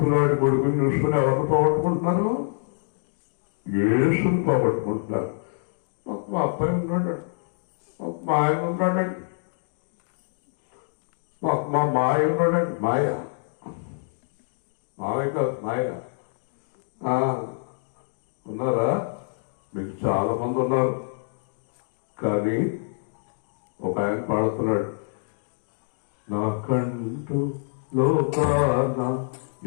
కొడుకుని చూసుకుని ఎవరిని పోగొట్టుకుంటున్నారు? యేసుని పోగొట్టుకుంటున్నారు. మా అబ్బాయి ఉన్నాడు, మా ఆయన ఉన్నాడండి, మా మాయ ఉన్నాడండి. మాయ, మావయ్య కాదు మాయ. ఉన్నారా? మీకు చాలా మంది ఉన్నారు. కానీ ఒక ఆయన పాడుతున్నాడు, నాకంటూ లోకాన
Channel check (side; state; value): right; silent; digital silence